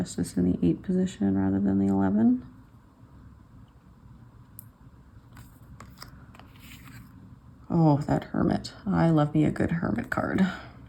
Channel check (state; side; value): identical; both; correlation 1.00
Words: in the 8 position rather than the 11. Oh, that Hermit. I love me a good Hermit card.